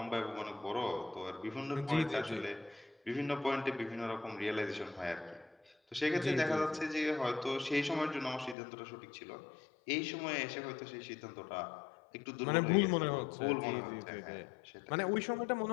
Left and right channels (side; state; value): right; drops out; at 8.6 s